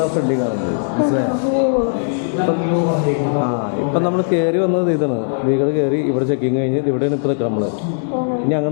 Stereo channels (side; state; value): right; silent; digital silence